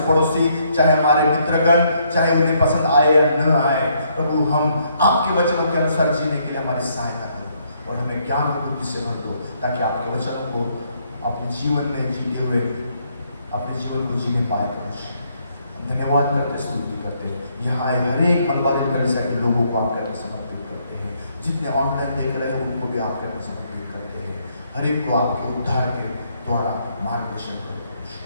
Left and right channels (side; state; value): both; inverted; correlation -0.71